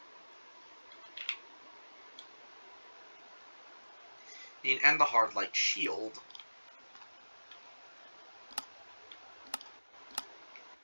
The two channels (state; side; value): inverted; both; correlation -1.00